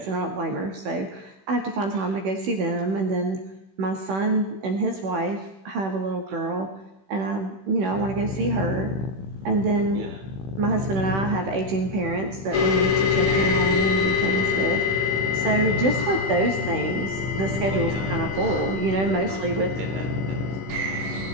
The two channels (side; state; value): left; late; 16 ms